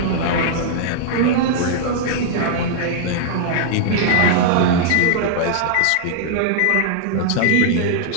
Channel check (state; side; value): different; both; correlation -0.01